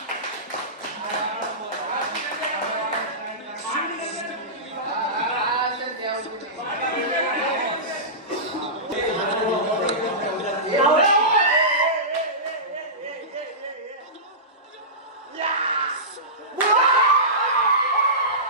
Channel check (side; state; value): both; normal; correlation -0.19